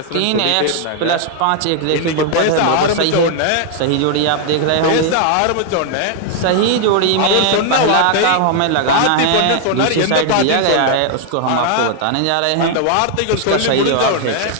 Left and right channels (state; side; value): different; both; correlation 0.00